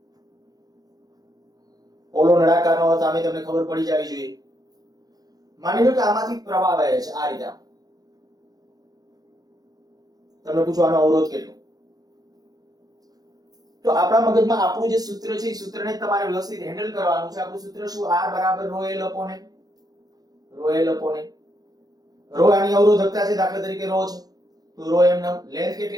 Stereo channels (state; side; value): late; left; 0.19 ms